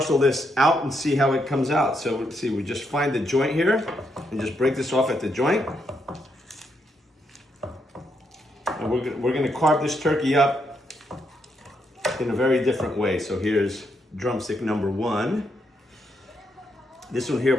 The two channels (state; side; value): normal; both; correlation 0.79